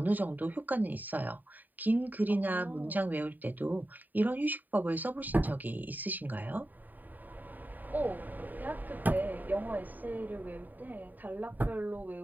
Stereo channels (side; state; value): left; late; 0.086 ms